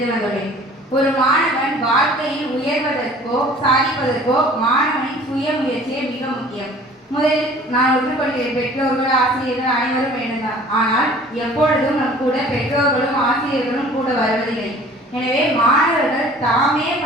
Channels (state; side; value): normal; both; correlation 0.49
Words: வந்துள்ளேன். ஒரு மாணவன் வாழ்க்கையில் உயர்வதற்கோ சாதிப்பதற்கோ மாணவனின் சுயமுயற்சியே மிக முக்கியம். முதலில் நான் ஒற்றுக்கொள்கிறேன். பெற்றோர்கள் ஆசிரியர்கள் அனைவரும் வேண்டும்தான். ஆனால் எப்பொழுதும் நம் கூட பெற்றோர்களும் ஆசிரியர்களும் கூட வருவதில்லை. எனவே மாணவர்கள் தாமே